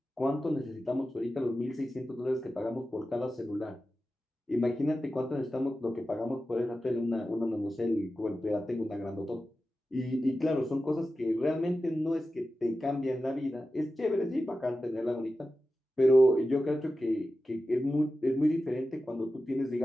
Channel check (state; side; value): normal; both; correlation 0.93